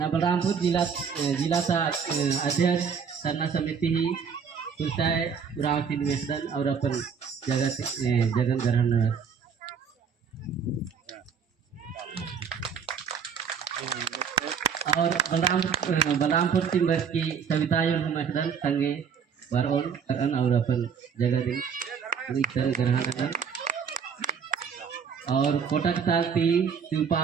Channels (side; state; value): left; quieter; 6.6 dB